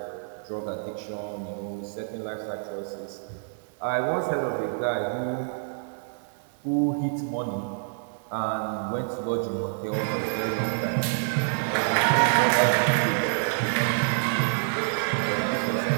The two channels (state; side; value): silent; left; 57 dB below the other